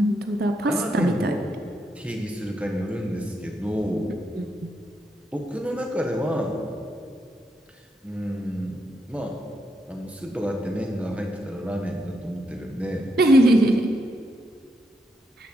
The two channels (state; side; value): normal; both; correlation 0.80